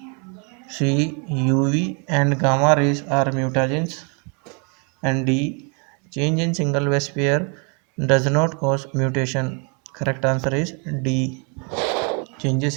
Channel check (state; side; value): quieter; left; 36.2 dB